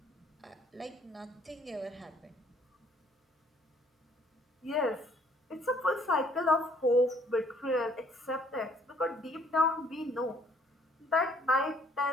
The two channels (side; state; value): both; normal; correlation 0.62